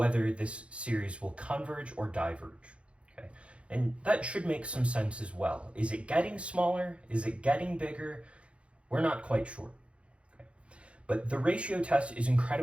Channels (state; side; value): late; left; 0.060 ms